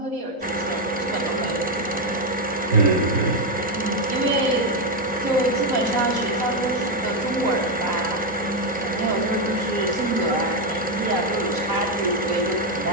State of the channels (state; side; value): normal; both; correlation 0.04